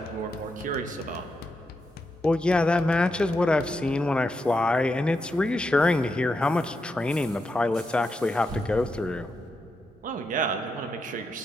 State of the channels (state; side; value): normal; both; correlation 0.84